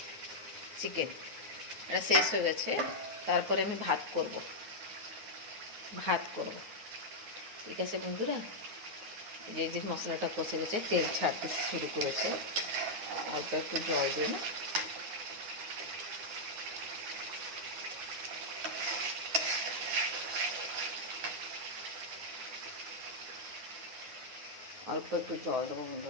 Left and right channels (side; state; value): left; late; 9.6 ms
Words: চিকেন, এটা শেষ হয়ে গেছে। তারপরে আমি ভাত করব। ঠিক আছে বন্ধুরা, এই যে মশলাটা কষে গেছে, তেল ছাড়তে শুরু করেছে। অল্প একটু জল দিয়ে না, অল্প একটু জল দেবো